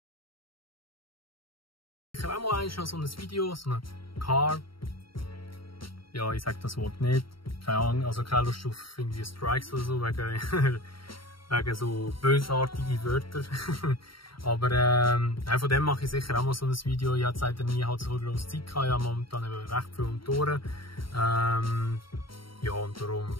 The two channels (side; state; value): right; late; 0.74 ms